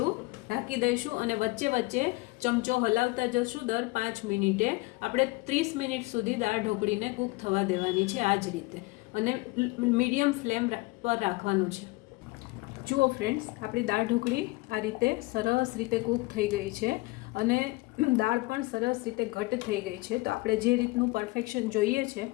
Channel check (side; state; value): right; quieter; 23.0 dB